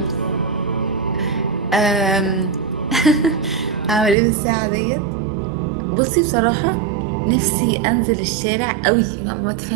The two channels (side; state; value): left; drops out; at 4.2 s